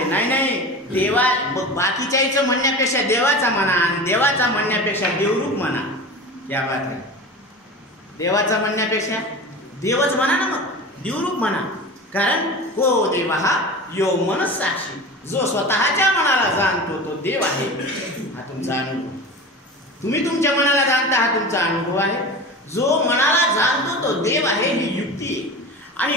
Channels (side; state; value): both; normal; correlation 0.32